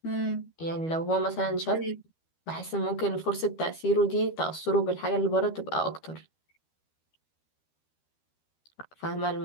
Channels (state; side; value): late; right; 13 ms